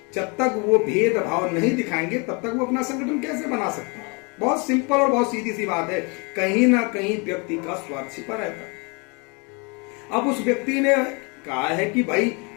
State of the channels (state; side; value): quieter; right; 31.6 dB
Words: जब तक वो भेदभाव नहीं दिखाएंगे तब तक वो अपना संगठन कैसे बना सकते हैं। बहुत सिंपल और बहुत सीधी सी बात है। कहीं ना कहीं व्यक्ति का स्वार्थ छिपा रहता है। अब उस व्यक्ति ने कहा है कि भाई